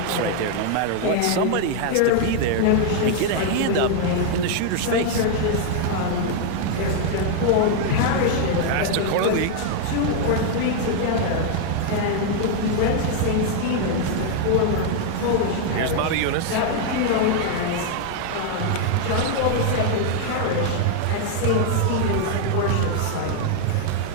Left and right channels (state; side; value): different; both; correlation 0.00